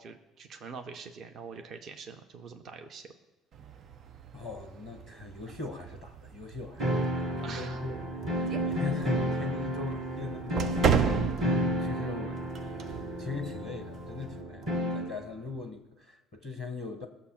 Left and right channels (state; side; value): normal; both; correlation 0.42